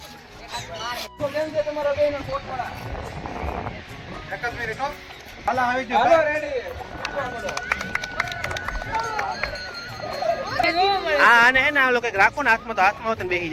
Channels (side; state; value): both; identical; correlation 1.00